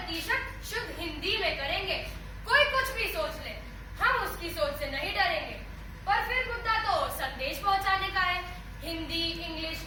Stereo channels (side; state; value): both; identical; correlation 1.00